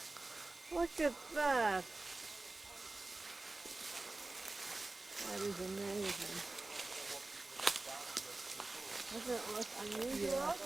Look at that. That is amazing. Doesn't it look unusual?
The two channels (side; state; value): left; quieter; 3.1 dB